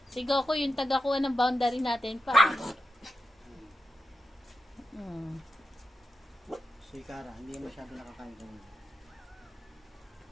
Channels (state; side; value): normal; both; correlation 0.89